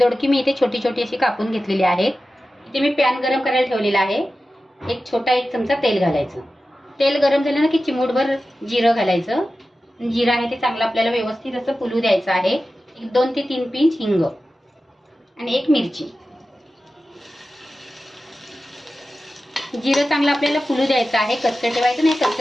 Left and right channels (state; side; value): normal; both; correlation 0.94